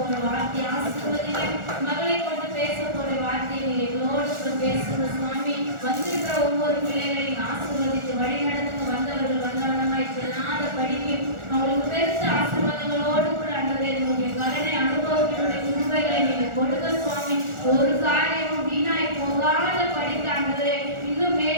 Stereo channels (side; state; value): left; late; 1.4 ms